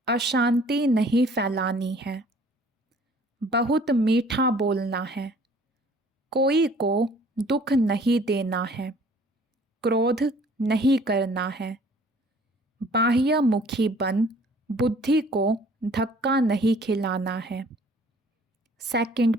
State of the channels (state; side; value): normal; both; correlation 0.54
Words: अशांति नहीं फैलानी है, बहुत मीठा बोलना है, कोई को दुख नहीं देना है, क्रोध नहीं करना है, बाह्यमुखी बन बुद्धि को धक्का नहीं खिलाना है। सेकंड